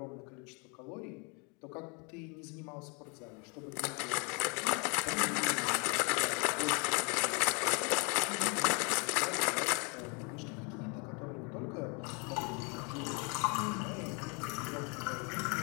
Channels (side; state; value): right; quieter; 33.5 dB